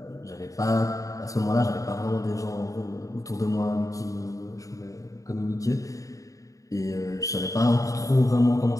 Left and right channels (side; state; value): right; late; 0.16 ms